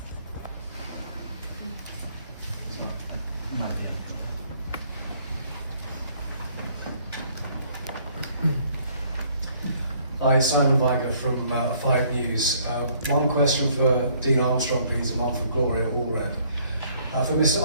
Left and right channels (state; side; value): inverted; both; correlation -0.62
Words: Hi, Simon Viger from 5 News. One question for Dean Armstrong, please, and one for Gloria Allred. For Mr.